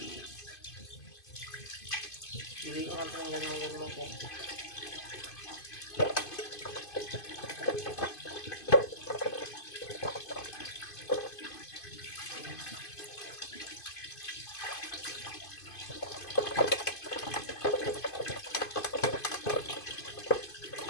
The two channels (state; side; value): late; right; 2.5 ms